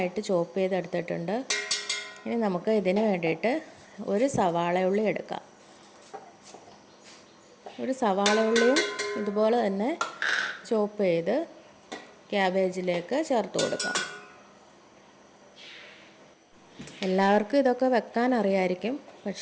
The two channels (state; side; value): identical; both; correlation 1.00